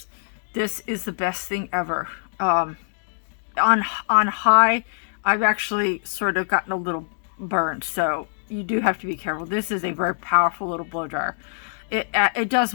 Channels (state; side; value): silent; right; digital silence